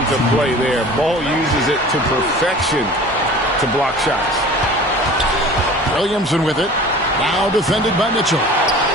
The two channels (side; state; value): both; normal; correlation 0.42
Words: play there. Ball uses it to perfection to block shots. Williamson with it. Now defended by Mitchell.